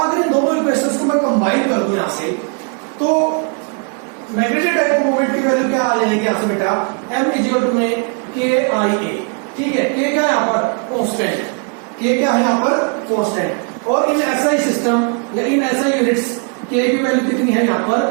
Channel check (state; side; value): quieter; left; 38.8 dB